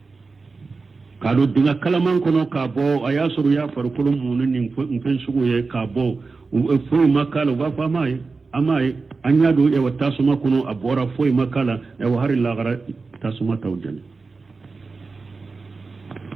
kado dinga kalaman kono ka bo ayasuru ya farkulum munin nin fen sugu ye ka bo fo makala wa fa mai amai anya do e wata suma kono abora fo makala e wa hari la gara tasuma tawjani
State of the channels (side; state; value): left; quieter; 4.2 dB